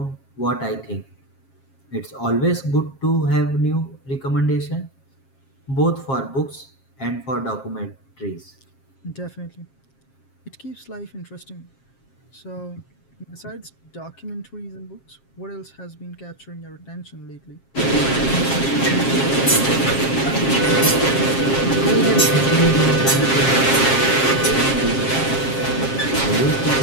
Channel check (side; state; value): right; late; 7.4 ms